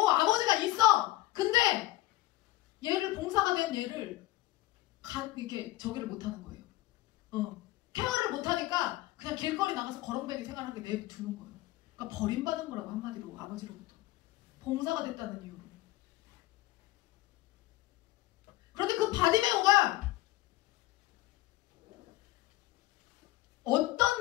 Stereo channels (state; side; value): quieter; right; 17.9 dB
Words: 아버지가 있어. 근데 얘를 봉사가 된 얘를 이렇게 저기를 못하는 거예요. 케어를 못하니까 그냥 길거리 나가서 거렁뱅이 생활하게 내두는 거예요. 그러니까 버림받은 거라고 한마디로 아버지로부터. 봉사가 됐다는 이유로. 그런데 그 바디메오가